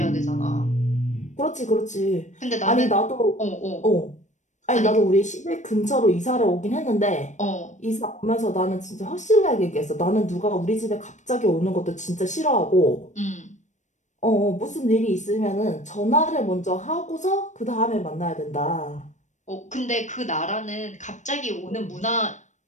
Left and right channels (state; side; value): late; right; 0.35 ms